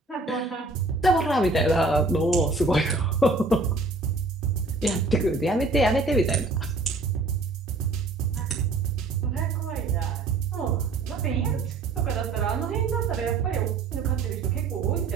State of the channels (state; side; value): quieter; left; 3.5 dB